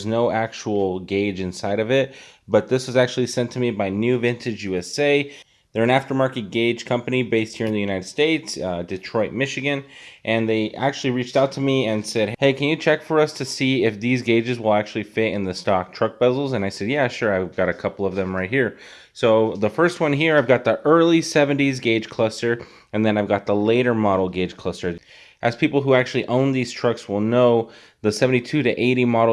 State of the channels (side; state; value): both; identical; correlation 1.00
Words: no actual gauge inside of it. But this was actually sent to me by New Vintage USA. They're an aftermarket gauge company based here in the United States, Detroit, Michigan, and they actually reached out to me and said, hey, can you check for us to see if these gauges will actually fit in the stock truck bezels? And I said, yeah, sure, I've got a couple of them right here. So the first one here, I've got the early 70s gauge cluster, and then I've got the later model gauge cluster. As people who actually own these trucks will know, the 72 to 80